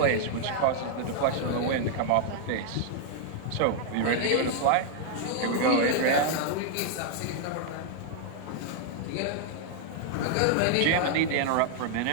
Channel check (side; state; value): both; different; correlation 0.00